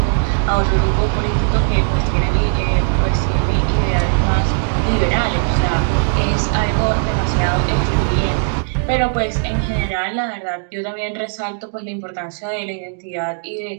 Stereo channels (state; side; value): silent; left; digital silence